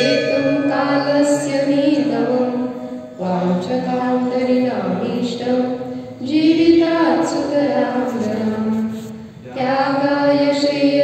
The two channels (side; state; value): both; identical; correlation 1.00